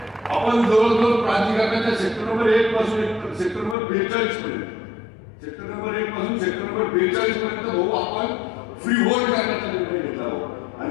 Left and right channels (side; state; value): right; drops out; at 3.8 s